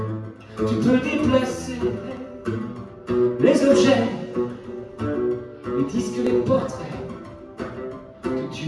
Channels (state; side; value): identical; both; correlation 1.00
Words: Tu peux déplacer les objets, les disques, les portraits que tu